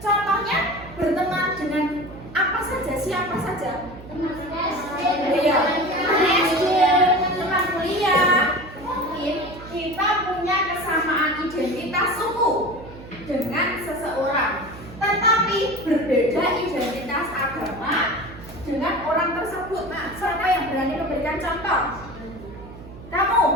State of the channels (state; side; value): noise; right; hum, 16 dB below the sound